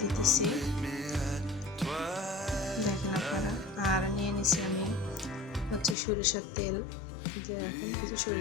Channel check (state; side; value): drops out; right; at 6.0 s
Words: দিতেছি, দেখেন আপনারা। আর নিয়ে নিছি আমি হচ্ছে সরিষার তেল, যে এখন কিছু